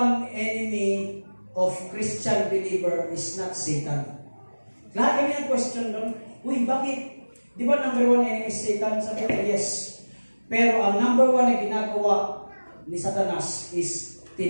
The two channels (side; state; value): both; inverted; correlation -1.00